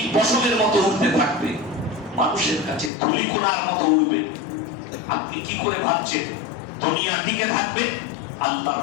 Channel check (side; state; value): right; drops out; at 2.9 s